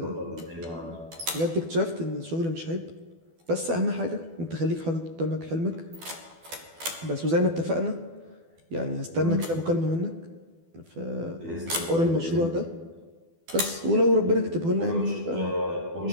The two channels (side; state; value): left; late; 12 ms